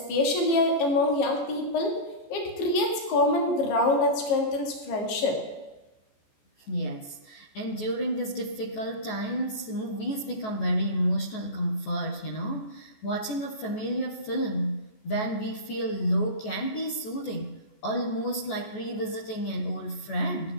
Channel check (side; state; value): right; late; 14 ms